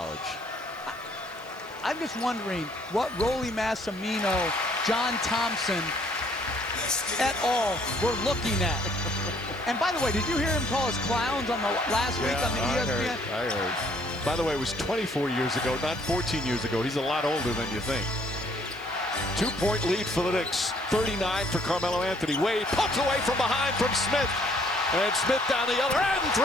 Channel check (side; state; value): right; noise; hiss, 26 dB below the sound